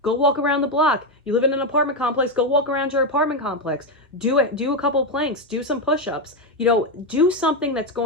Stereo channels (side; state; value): both; normal; correlation 0.07